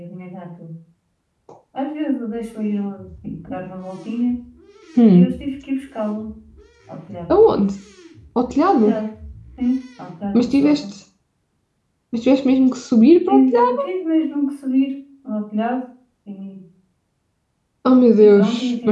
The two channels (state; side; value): identical; both; correlation 1.00